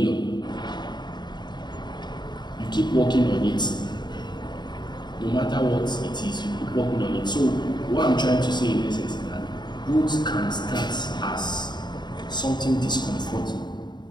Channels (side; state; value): right; late; 0.21 ms